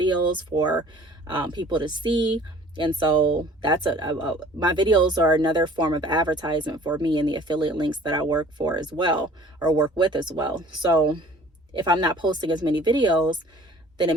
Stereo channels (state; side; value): normal; both; correlation 0.50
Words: for people to see. And so that's my videos are another form of advertisement for me and the affiliate links that I work for as well, or work with as well. So if I'm not posting as many videos, then it